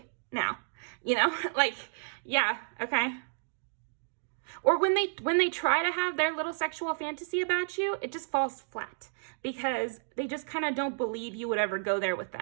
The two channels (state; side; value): silent; left; digital silence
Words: now, you know, like, yeah, okay. Or when they try to have their little sexual fantasy about you, it just falls flat because they just kind of don't believe you would ever go there with